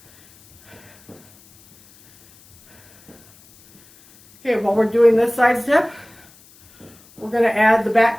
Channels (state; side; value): noise; left; hiss, 27 dB below the sound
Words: Okay, while we're doing this side step, we're going to add the